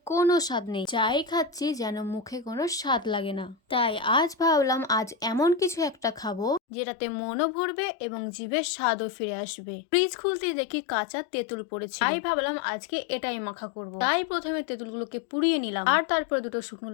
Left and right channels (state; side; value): drops out; right; at 6.6 s